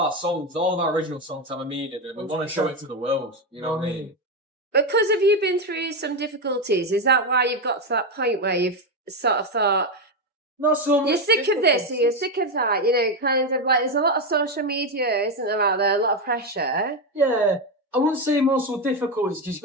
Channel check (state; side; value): normal; both; correlation 0.10